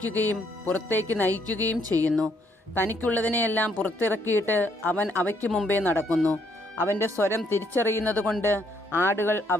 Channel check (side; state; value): both; normal; correlation 0.70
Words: പുറത്തേക്ക് നയിക്കുകയും ചെയ്യുന്നു. തനിക്കുള്ളതിനെയെല്ലാം പുറത്തിറക്കിയിട്ട് അവൻ അവയ്ക്ക് മുമ്പേ നടക്കുന്നു. അവൻ്റെ സ്വരം തിരിച്ചറിയുന്നതുകൊണ്ട് ആടുകൾ